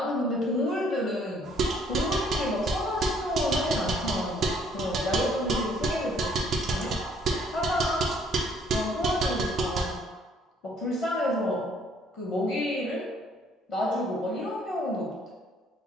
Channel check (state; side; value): normal; both; correlation 0.62